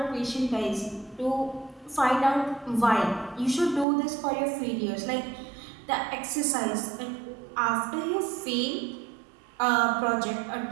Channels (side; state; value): left; drops out; at 3.9 s